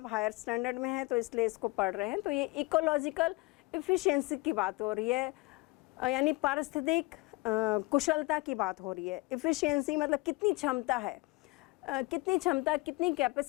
हायर स्टैंडर्ड में हैं तो इसलिए इसको पढ़ रहे हैं। तो ये इकोलॉजिकल एफिशिएंसी की बात हो रही है, यानी पारिस्थितिक कुशलता की बात हो रही है। एफिशिएंसी मतलब कितनी क्षमता है, कितनी क्षमता, कितनी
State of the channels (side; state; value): right; quieter; 24.2 dB